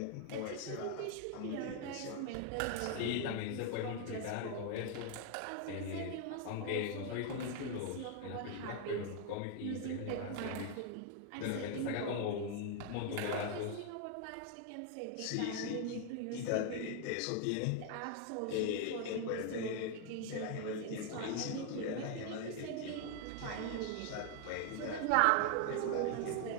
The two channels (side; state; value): both; different; correlation 0.00